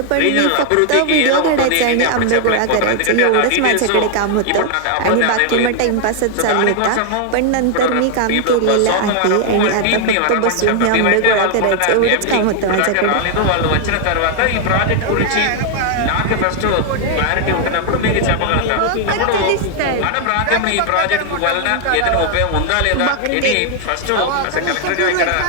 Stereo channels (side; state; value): both; different; correlation 0.00